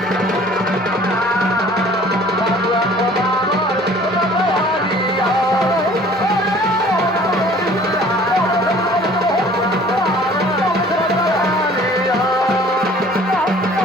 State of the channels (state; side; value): normal; both; correlation 0.51